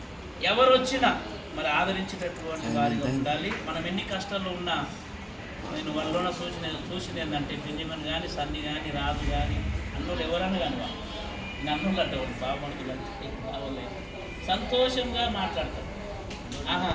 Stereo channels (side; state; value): both; identical; correlation 1.00